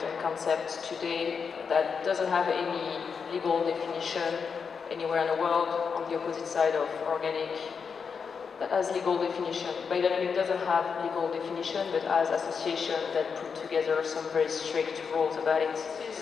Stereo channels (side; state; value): right; quieter; 5.9 dB